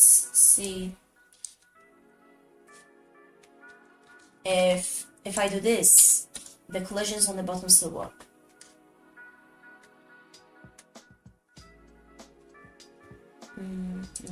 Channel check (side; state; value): both; identical; correlation 1.00